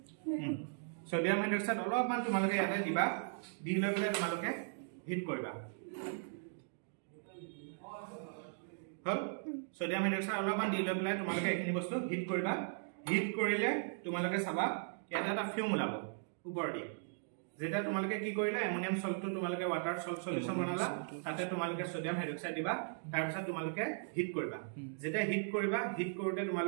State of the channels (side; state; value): left; silent; digital silence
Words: হাইড্রক্সাইড অলপমান তোমালোকে ইয়াতে দিবা দি লৈ পেলাই তোমালোকে হিট কৰিবা হল সোডিয়াম হাইড্ৰক্সাইড অলপমান দি লৈ পেলাই তোমালোকে এখিনি বস্তু হিট কৰিবা হিট কৰিলে তোমালোকে চাবা ইয়াতে এটা ফিউম ওলাব ওপৰ দি যেটা তোমালোকে কি কৰিলা এমোনিয়াম সল্টটো তোমালোকে ওয়াটাৰ সল্ট সলিউশন বনালা তাতে তোমালোকে সোডিয়াম হাইড্ৰক্সাইড দিবা তাৰ পিছত তোমালোকে হিট কৰিবা যেটা হিট কৰিবা হিট কৰোতে